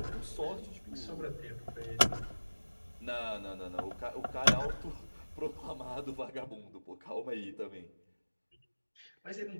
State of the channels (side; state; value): both; inverted; correlation -1.00